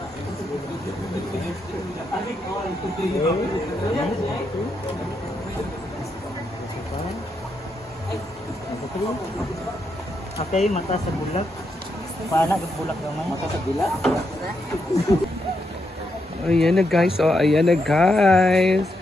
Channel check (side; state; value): both; normal; correlation 0.81